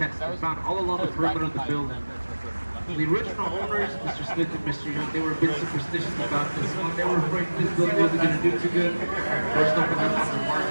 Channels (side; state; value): both; inverted; correlation -1.00